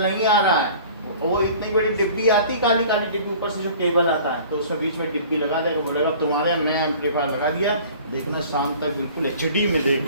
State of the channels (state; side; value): inverted; both; correlation -0.47